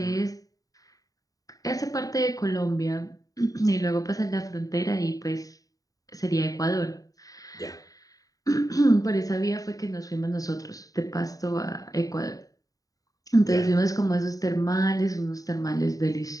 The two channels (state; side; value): late; right; 0.17 ms